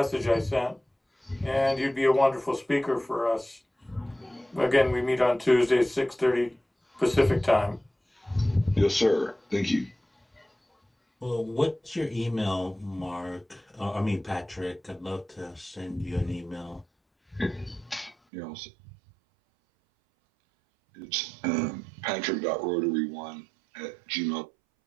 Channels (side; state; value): left; drops out; at 18.2 s